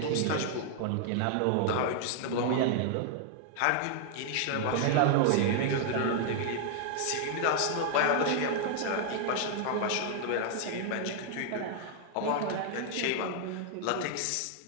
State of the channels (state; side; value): different; both; correlation 0.00